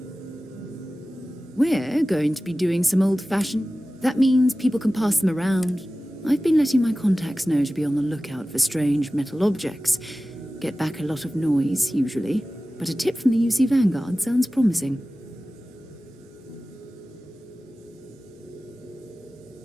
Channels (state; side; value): normal; both; correlation 0.96